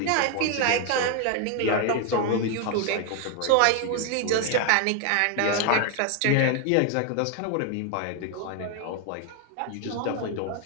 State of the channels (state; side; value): different; both; correlation 0.00